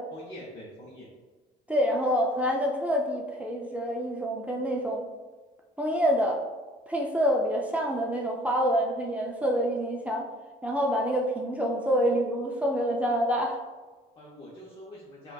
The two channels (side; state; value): both; normal; correlation 0.55